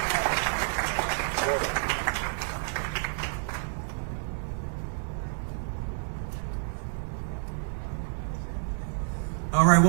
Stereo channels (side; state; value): left; silent; digital silence